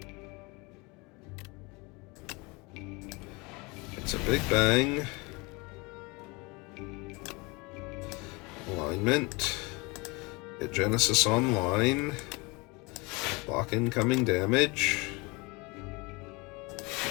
It's a big bang. Alignment. Hit Genesis online. Block incoming damage.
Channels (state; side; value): quieter; right; 26.6 dB